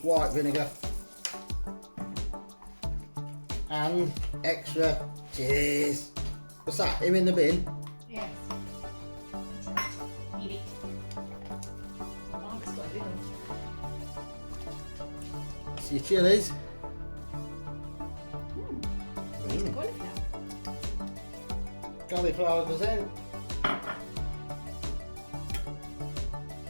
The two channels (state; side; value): inverted; both; correlation -1.00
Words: white vinegar. And extra cheese. What's that? Him in the bin? Yes. Eat it. Mark's got it on. It's your chilies. It's cauliflower. Cauliflower goes in.